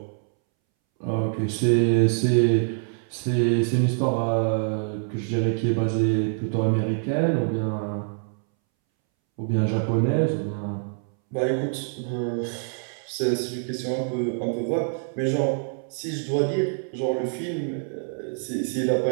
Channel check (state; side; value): silent; left; 62 dB below the other